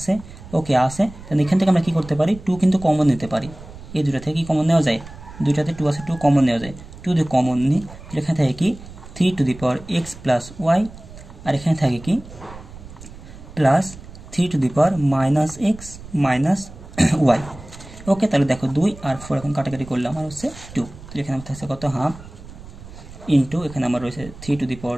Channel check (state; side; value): noise; right; rumble, 17 dB below the sound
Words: ওকে আছে, তাহলে এখান থেকে আমরা কী করতে পারি 2 কিন্তু কমন নিতে পারি, এই দুটো থেকে কি কমন নেওয়া যায়, দুইটাতে 2 আছে 2 কমন নেওয়া যায়, 2 দিয়ে কমন নিই তাহলে এখানে থাকে কি 3 to the power X plus Y, আর এখানে থাকে কি plus 3 to the power minus X minus Y. Okay, তাহলে দেখো 2 আর 4 এখন কাটাকাটি করলে আমার হচ্ছে 2, তাহলে এখানে আমার থাকছে কত হাফ ইন্টু এখানে আমার রয়েছে 3 to the power